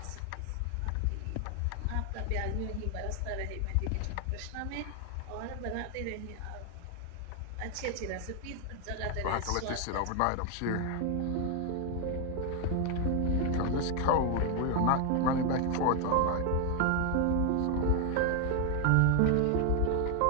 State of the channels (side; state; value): both; different; correlation 0.01